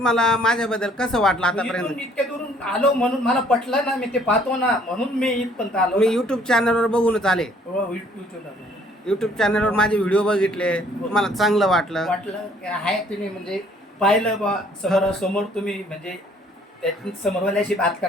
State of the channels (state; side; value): normal; both; correlation 0.60